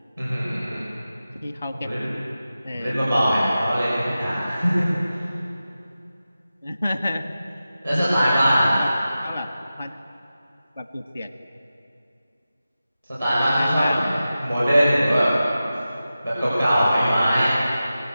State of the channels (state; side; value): inverted; both; correlation -0.93